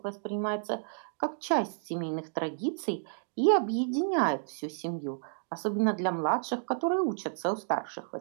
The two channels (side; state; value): left; silent; digital silence